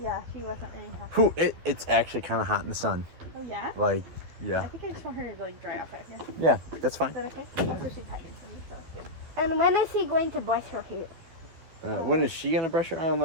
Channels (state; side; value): late; left; 13 ms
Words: Yeah, she wasn't really happy. Who? It's actually kind of hot in the sun. Oh yeah? Like, I yeah. think I just want her to like dry off out here. Yeah, that's fine. Is that okay? So she's hiding from me, so. And when is he going to brush her hair? When is she gonna brush her? I don't